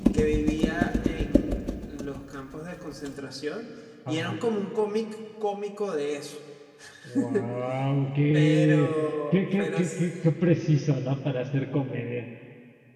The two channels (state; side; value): identical; both; correlation 1.00